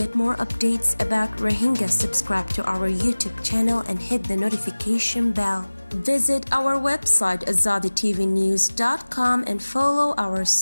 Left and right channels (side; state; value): both; inverted; correlation -1.00